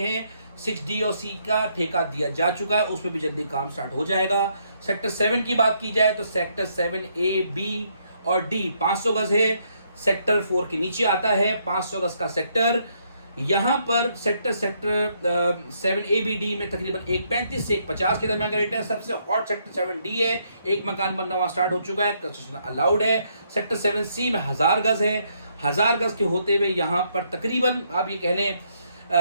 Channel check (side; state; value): both; inverted; correlation -0.73